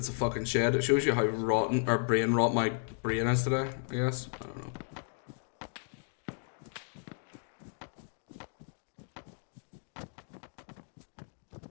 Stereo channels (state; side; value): silent; right; 55 dB below the other